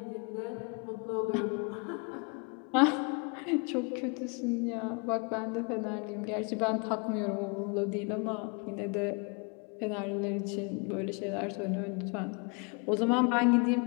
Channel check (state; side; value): quieter; right; 33.5 dB